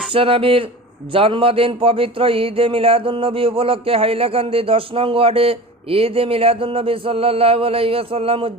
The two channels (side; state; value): both; normal; correlation 0.34